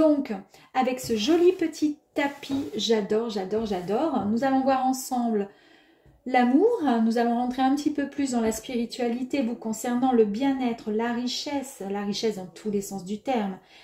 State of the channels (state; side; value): identical; both; correlation 1.00